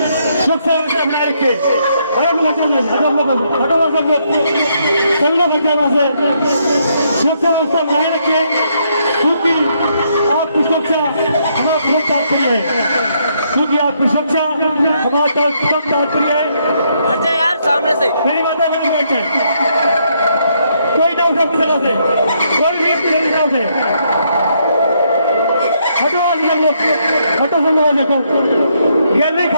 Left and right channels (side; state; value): both; inverted; correlation -0.74